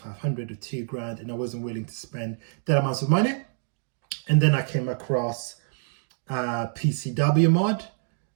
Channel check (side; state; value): left; silent; digital silence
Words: or 2 grand, and I wasn't willing to spend that amount of money. And then I came across PCW mod.